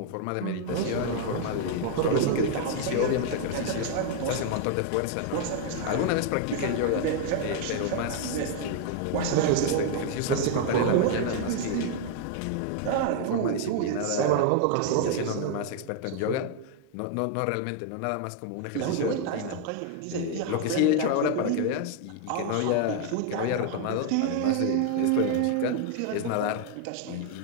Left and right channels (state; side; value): different; both; correlation 0.00